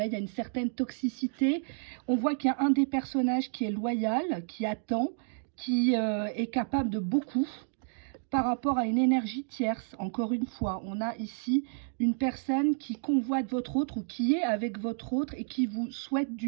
il y a une certaine toxicité. On voit qu'il y a un des personnages qui est loyal, qui attend, qui est capable de beaucoup par rapport à une énergie tierce. Encore une fois, on a ici une personne qui convoite votre autre ou qui est avec votre autre et qui vous souhaite du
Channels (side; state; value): left; silent; 57 dB below the other